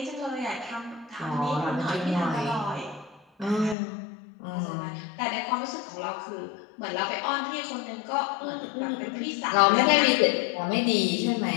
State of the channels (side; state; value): right; drops out; at 3.8 s